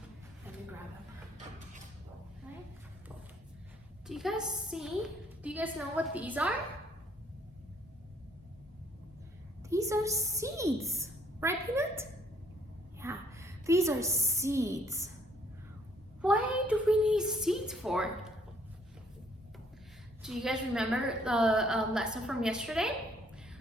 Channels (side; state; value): both; normal; correlation 0.65